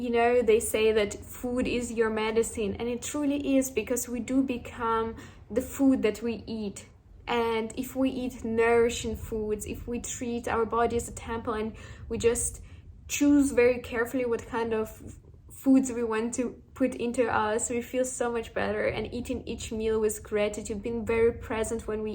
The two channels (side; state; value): both; identical; correlation 1.00